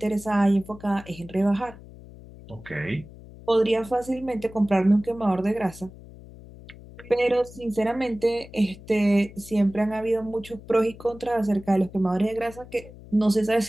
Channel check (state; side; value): noise; left; hum, 18 dB below the sound